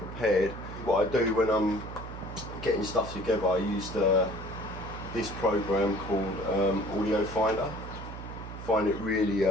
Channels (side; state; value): right; noise; hum, 10 dB below the sound